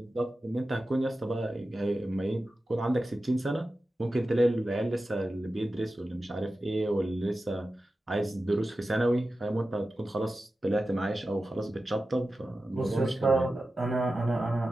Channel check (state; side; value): normal; both; correlation 0.93